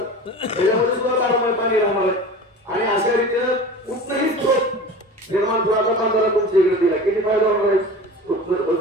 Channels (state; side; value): normal; both; correlation 0.36